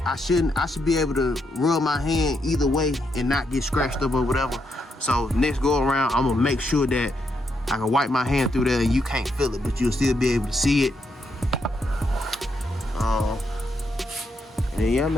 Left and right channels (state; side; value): normal; both; correlation 0.79